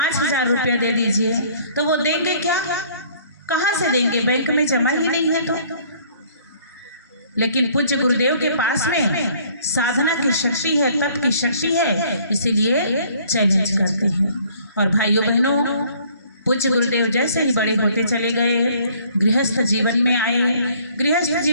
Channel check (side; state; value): both; inverted; correlation -0.58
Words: रुपया दे दीजिए, तो वो देंगे क्या? कहाँ से देंगे? बैंक में जमा ही नहीं है तो। लेकिन पूज्य गुरुदेव के पास में साधना की शक्ति है, तप की शक्ति है, इसीलिए चैलेंज करते हैं। और भाइयों बहनों, पूज्य गुरुदेव जैसे ही बड़े होते चले गए, गृहस्थ जीवन में आए, गृहस्थ